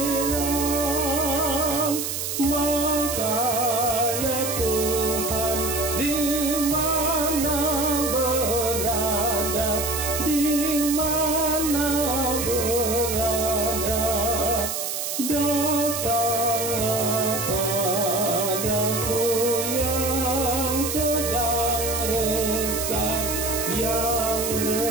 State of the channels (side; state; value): right; noise; hiss, 3 dB below the sound